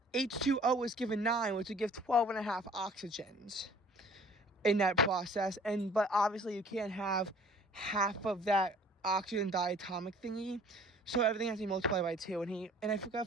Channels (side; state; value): both; normal; correlation 0.52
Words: H2O was given 9, which would give 12.5 oxygens in that process. But obviously you can't have half of that oxygen diatomic thingy, so everything has to be multiplied by 2. And I